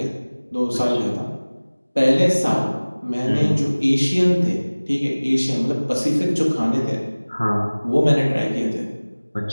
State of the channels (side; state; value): both; inverted; correlation -1.00